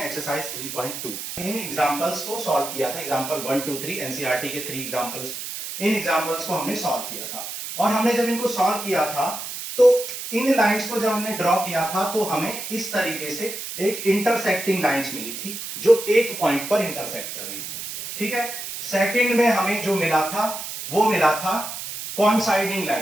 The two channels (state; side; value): noise; right; hiss, 7 dB below the sound